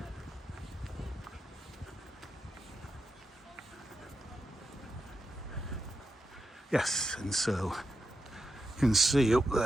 Yes, and so you can see up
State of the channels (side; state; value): both; normal; correlation 0.87